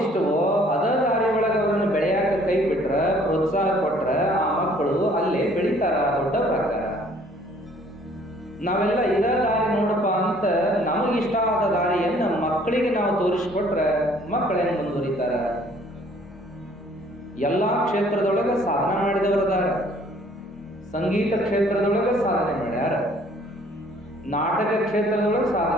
ಅದರ ದಾರಿ ಒಳಗೆ ಅವರನ್ನು ಬೆಳೆಯಾಕ ಕೈ ಬಿಟ್ರ, ಪ್ರೋತ್ಸಾಹ ಕೊಟ್ರ ಆ ಮಕ್ಕಳು ಅಲ್ಲೇ ಬೆಳೀತಾರ, ದೊಡ್ಡವರಾಗ್ತಾರ. ನಾವೆಲ್ಲ ಇದ ದಾರಿ ನೋಡಪ್ಪ ಅಂತ ನಮಗಿಷ್ಟ ಆದ ದಾರಿಯನ್ನ ಮಕ್ಕಳಿಗೆ ನಾವು ತೋರಿಸ್ಕೊಟ್ರೆ ಮಕ್ಕಳೇನು ಮುಂದುವರಿತಾರ? ಎಲ್ಲಾ ಕ್ಷೇತ್ರದೊಳಗೆ ಸಾಧನೆ ಮಾಡಿದವರದಾರ. ಸಂಗೀತ ಕ್ಷೇತ್ರದೊಳಗೆ ಸಾಧನೆ ಮಾಡ್ಯಾರ, ನಾಟಕ ಕ್ಷೇತ್ರದೊಳಗೆ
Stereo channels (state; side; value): normal; both; correlation 0.58